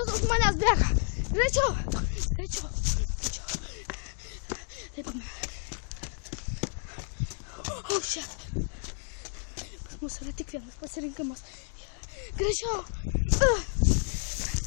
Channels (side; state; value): right; silent; 57 dB below the other